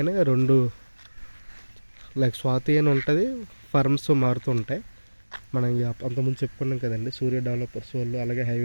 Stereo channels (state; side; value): inverted; both; correlation -1.00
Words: రెండు లైక్ స్వాతి అని ఉంటుంది, ఫర్మ్స్ మారుతుంటాయి. మనం అంతకుముందు చెప్పుకున్నాం కదండి, సూర్య డెవలపర్స్ వాళ్ళు అలాగే